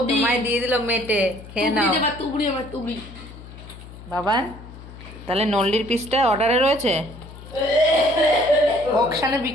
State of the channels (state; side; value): noise; left; hum, 16 dB below the sound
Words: তোমায় দিয়ে দিল মেটে, খেয়ে নাও। দেবা তুবড়ি আমার তুবড়ি। বাবান তাহলে নল্লির পিসটা অর্ডারে রয়েছে? অকশানে